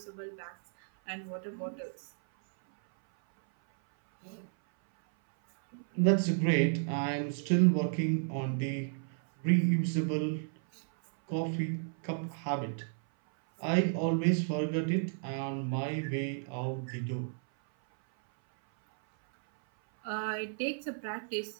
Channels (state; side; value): silent; left; 56 dB below the other